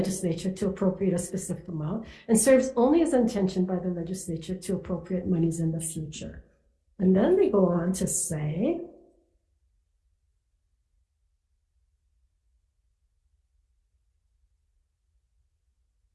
to appropriate a specific amount, and serves only as intentioned by the legislature to appropriate monies in the future. And then they go on to say,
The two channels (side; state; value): both; identical; correlation 1.00